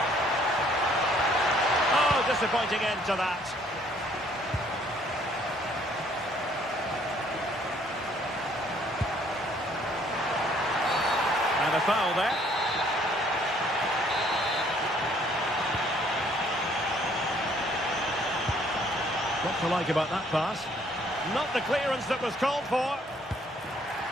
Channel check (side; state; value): both; normal; correlation 0.62